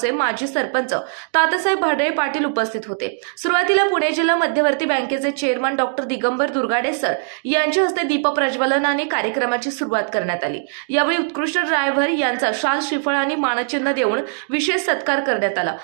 माजी सरपंच तात्यासाहेब भाडळे पाटील उपस्थित होते। सुरुवातीला पुणे जिल्हा मध्यवर्ती बँकेचे chairman doctor Digambar Durgade sir यांच्या हस्ते दीप प्रज्वलनाने कार्यक्रमाची सुरुवात करण्यात आली। यावेळी उत्कृष्ट ड्रायव्हर यांचा शाल श्रीफळ आणि मानचिन्ह देऊन विशेष सत्कार करण्यात आला।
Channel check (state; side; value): silent; left; digital silence